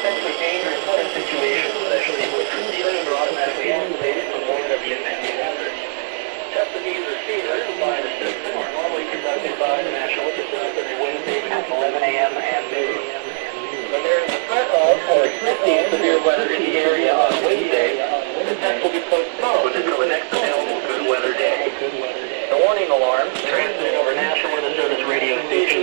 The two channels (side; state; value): left; silent; digital silence